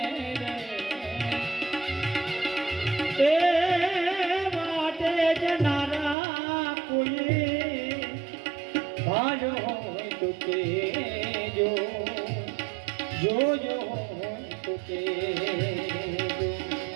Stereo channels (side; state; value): left; drops out; at 6.2 s